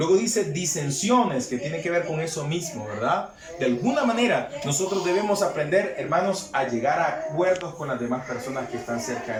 dice disensiones, que tiene que ver con eso mismo, ¿verdad? De alguna manera nosotros debemos aprender, hermanos, a llegar a acuerdos con las demás personas que están cerca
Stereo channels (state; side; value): identical; both; correlation 1.00